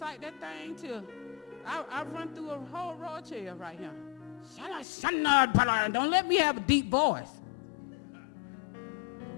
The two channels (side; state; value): right; drops out; at 4.9 s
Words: that thing till I run through a whole row of chairs right here. Don't let me have a deep voice.